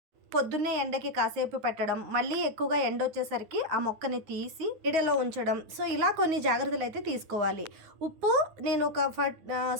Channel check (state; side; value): late; left; 9.6 ms